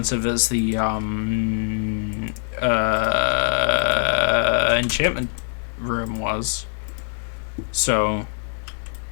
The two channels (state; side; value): silent; right; 64 dB below the other